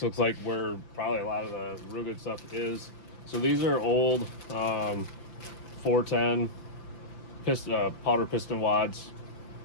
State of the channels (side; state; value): right; late; 5.8 ms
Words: looks like where probably a lot of the real good stuff is. So these are old 410 powder piston wads.